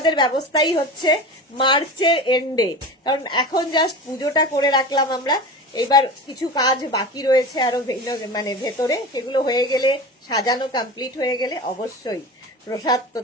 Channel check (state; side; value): normal; both; correlation 0.31